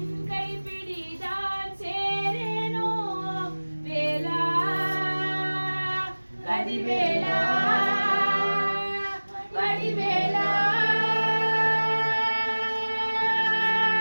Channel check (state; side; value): inverted; both; correlation -1.00